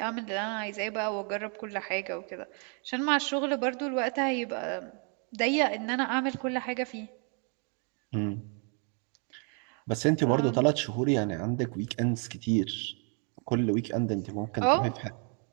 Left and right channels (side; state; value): left; quieter; 39.2 dB